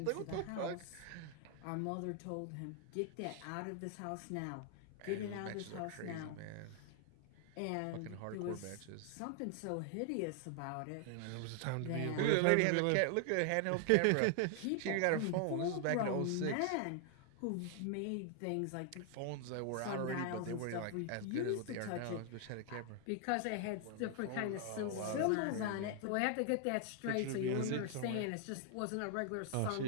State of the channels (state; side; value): different; both; correlation 0.00